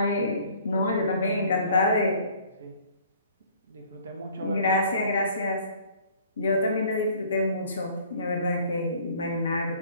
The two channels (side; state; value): both; inverted; correlation -0.54